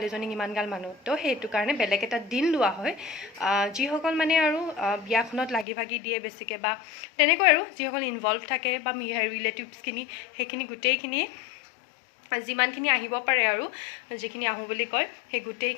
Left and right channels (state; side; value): drops out; right; at 5.7 s